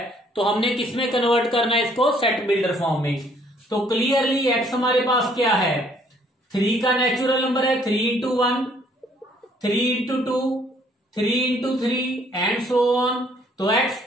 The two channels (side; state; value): both; normal; correlation 0.63